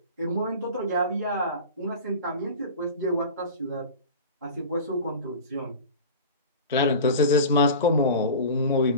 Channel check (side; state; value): both; inverted; correlation -0.33